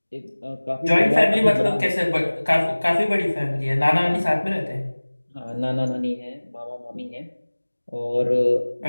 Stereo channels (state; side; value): inverted; both; correlation -1.00